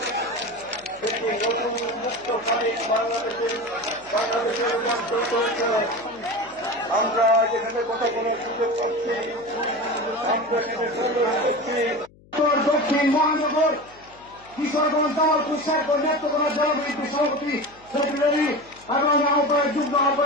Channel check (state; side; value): noise; left; hum, 27 dB below the sound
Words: একটি নতুন মুক্ত স্বাধীন বাংলাদেশের রূপান্তর করেছে। আমরা যেখানে কথা বলার সুযোগ পাচ্ছি, আমরা দক্ষিণ মহানগর কিশোরগঞ্জ দল কুশার নেতৃত্ব জনবিদ্যুৎ সভাপতি সেক্রেটারি এবং আহ্বায়ক যুগ্ম